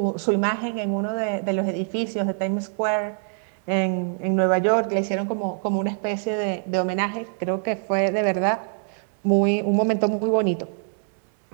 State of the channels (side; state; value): left; silent; digital silence